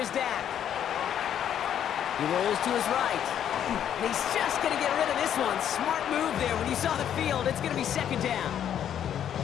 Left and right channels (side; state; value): right; quieter; 9.7 dB